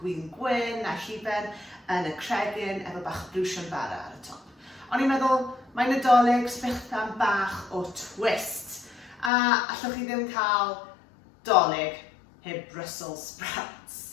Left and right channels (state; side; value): drops out; right; at 9.3 s